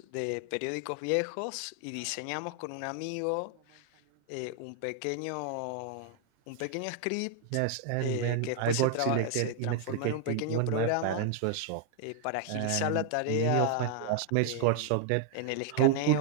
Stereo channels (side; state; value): both; different; correlation 0.00